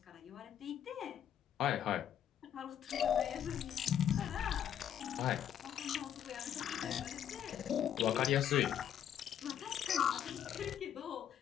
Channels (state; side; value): quieter; right; 9.8 dB